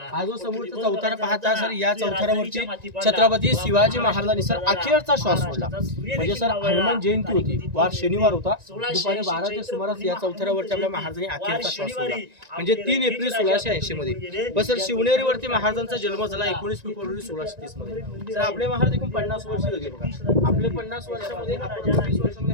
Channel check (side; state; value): left; late; 1.9 ms